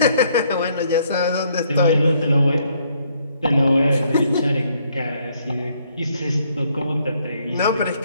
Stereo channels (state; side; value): inverted; both; correlation -0.69